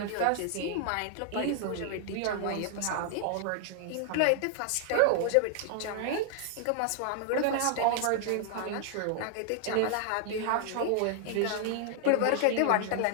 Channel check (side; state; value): both; different; correlation 0.00